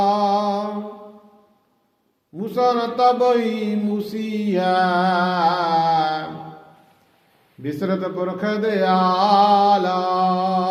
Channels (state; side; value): identical; both; correlation 1.00